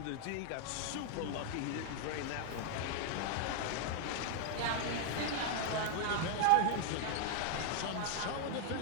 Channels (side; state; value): both; different; correlation 0.00